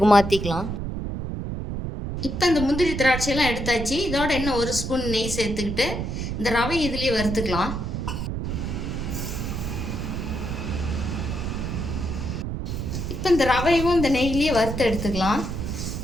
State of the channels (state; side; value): noise; right; rumble, 4 dB below the sound